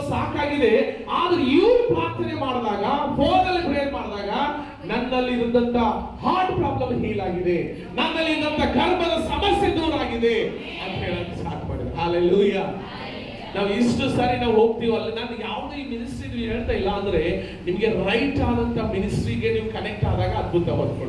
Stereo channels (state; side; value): identical; both; correlation 1.00